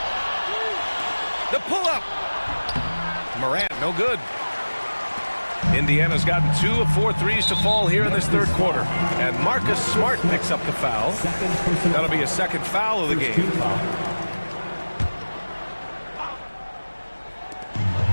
The pull-up. Morant, no good. Indiana's gotten 2 of 4 threes to fall here in this third quarter. And Marcus Smart picks up the foul. That'll be a second foul of the game.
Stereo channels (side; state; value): both; inverted; correlation -1.00